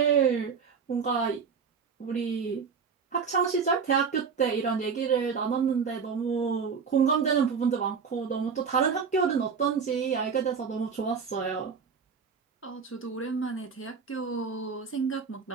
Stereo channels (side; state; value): left; quieter; 6.0 dB